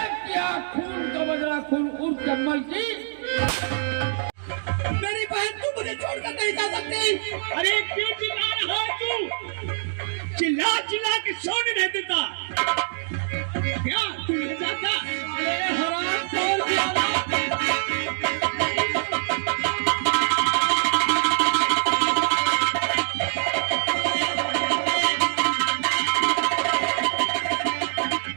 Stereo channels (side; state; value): left; silent; digital silence